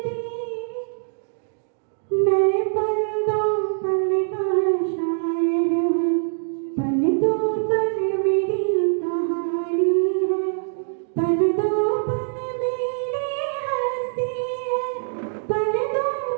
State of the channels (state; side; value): silent; left; digital silence